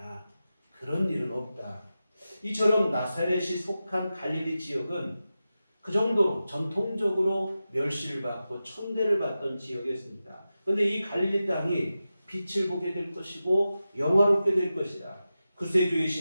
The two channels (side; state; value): both; inverted; correlation -0.93